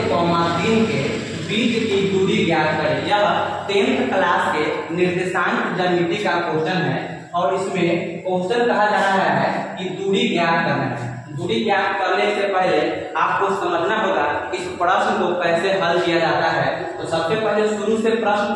के बीच की दूरी ज्ञात करें। यह 10th क्लास के निर्देशांक ज्यामिति का क्वेश्चन है और इसमें क्वेश्चन कहा जा रहा है कि दूरी ज्ञात करना है। दूरी ज्ञात करने से पहले आपको समझना होगा इस प्रश्न को कैसे हल किया जाता है। तो सबसे पहले शुरू से प्रश्न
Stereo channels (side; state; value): both; identical; correlation 1.00